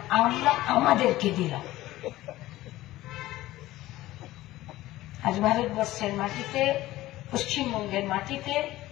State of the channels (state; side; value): quieter; right; 16.4 dB